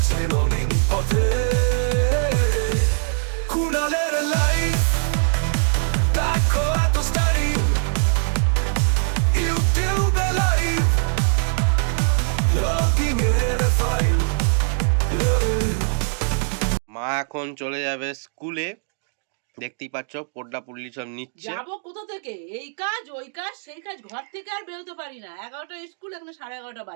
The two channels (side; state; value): left; silent; 64 dB below the other